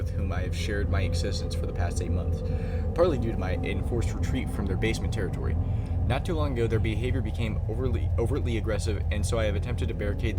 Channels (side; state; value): both; identical; correlation 1.00